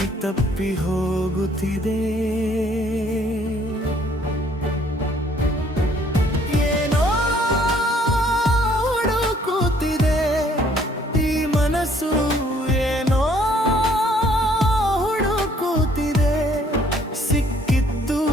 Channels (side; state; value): both; normal; correlation 0.62